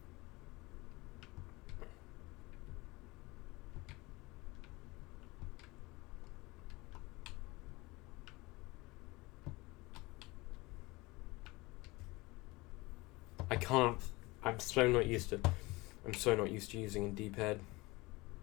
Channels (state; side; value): quieter; right; 22.7 dB